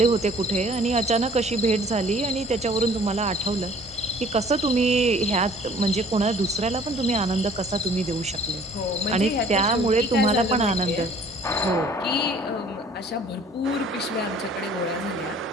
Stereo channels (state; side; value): normal; both; correlation 0.53